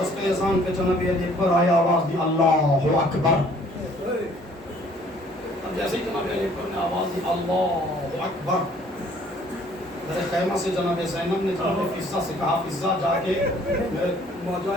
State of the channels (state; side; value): normal; both; correlation 0.58